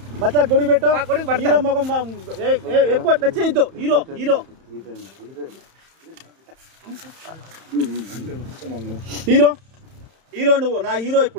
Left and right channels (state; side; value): late; left; 31 ms